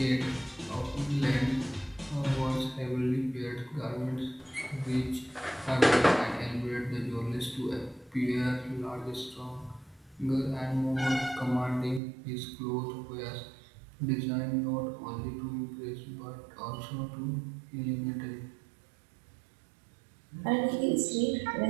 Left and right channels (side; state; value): left; drops out; at 12.0 s